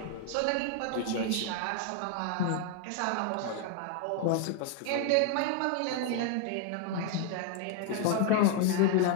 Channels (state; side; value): different; both; correlation 0.00